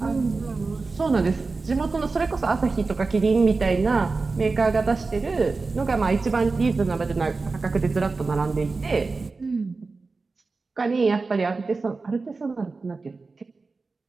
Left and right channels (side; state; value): left; quieter; 4.0 dB